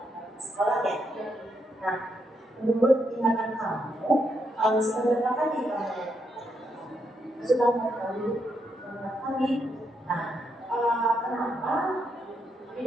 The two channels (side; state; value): both; normal; correlation 0.79